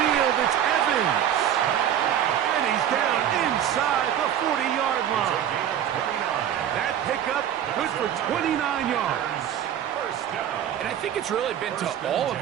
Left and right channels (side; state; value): left; quieter; 10.1 dB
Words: it's Evans. And he's down inside the 40-yard line. That pickup good for 29 yards. And I think it's really been to all of